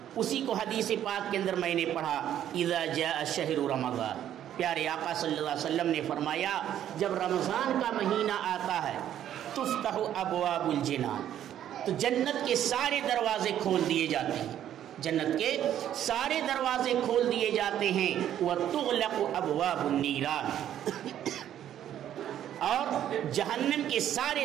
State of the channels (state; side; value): quieter; left; 10.9 dB